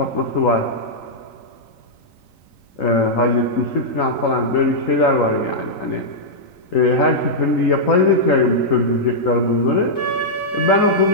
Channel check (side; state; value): right; late; 3.9 ms